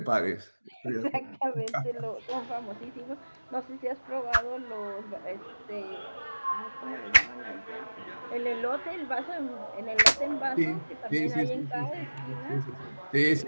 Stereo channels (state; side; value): inverted; both; correlation -1.00